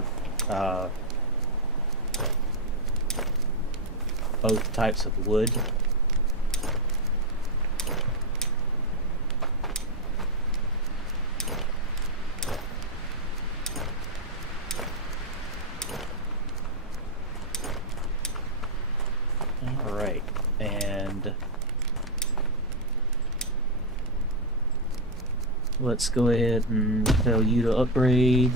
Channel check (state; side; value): normal; both; correlation 0.02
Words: both types of wood. Alright, and let's go ahead and tell you to upgrade.